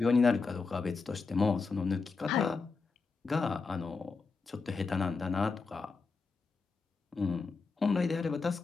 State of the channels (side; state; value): right; quieter; 4.5 dB